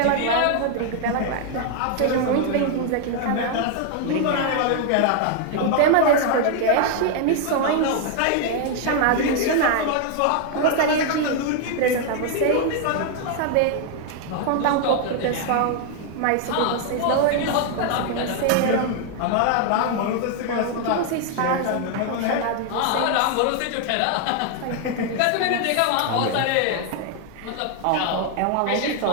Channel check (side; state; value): both; different; correlation 0.00